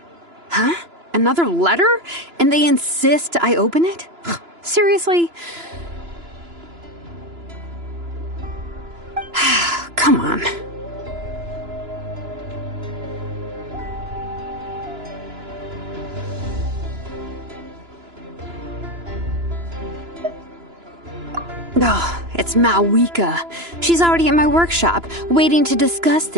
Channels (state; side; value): late; left; 2.9 ms